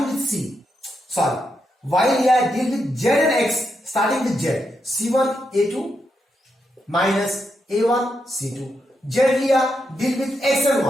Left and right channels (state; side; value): normal; both; correlation 0.83